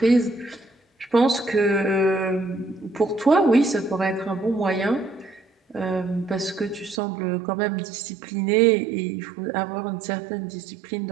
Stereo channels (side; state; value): left; drops out; at 7.0 s